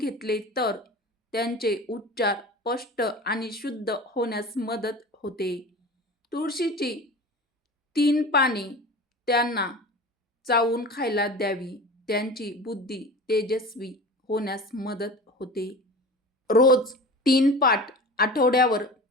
तर त्यांचे उच्चार स्पष्ट आणि शुद्ध होण्यास मदत होते. तुळशीची 3 पाने त्यांना चावून खायला द्यावी. त्यांची बुद्धी तेजस्वी होण्यास मदत होते. रोज 3 पाठ आठवड्यावर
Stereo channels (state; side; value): normal; both; correlation 0.35